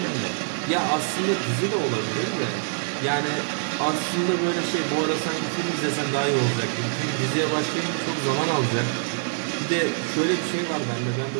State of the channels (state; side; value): silent; left; 62 dB below the other